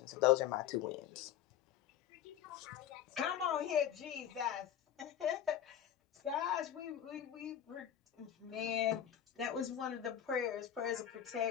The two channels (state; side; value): quieter; right; 10.2 dB